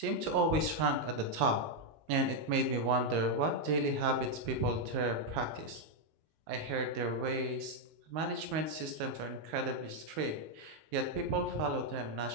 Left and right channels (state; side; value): late; left; 19 ms